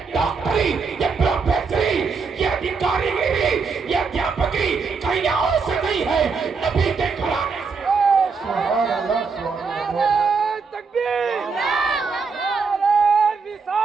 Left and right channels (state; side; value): quieter; left; 5.0 dB